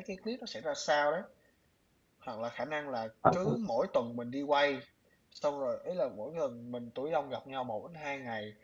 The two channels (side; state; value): both; identical; correlation 1.00